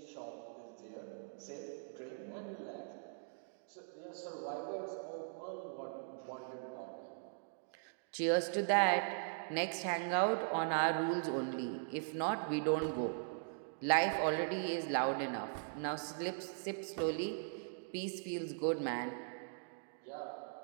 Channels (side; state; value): left; silent; digital silence